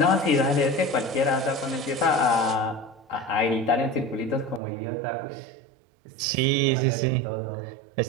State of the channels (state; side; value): drops out; left; at 4.6 s